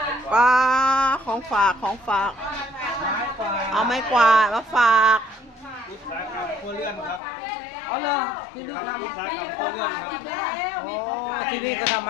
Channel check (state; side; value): drops out; right; at 7.2 s